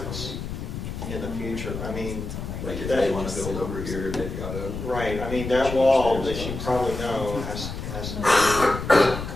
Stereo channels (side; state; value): left; noise; rumble, 7 dB below the sound